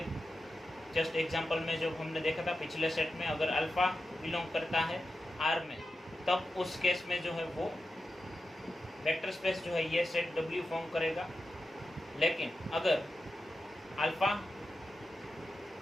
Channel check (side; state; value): both; normal; correlation 0.91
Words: जस्ट एग्जांपल में जो हमने देखा था पिछले सेट में, अगर अल्फ़ा बिलोंग करता है R में, तब उस केस में जो है वो वेक्टर स्पेस जो है ये सेट W फॉर्म करेगा। लेकिन अगर अल्फ़ा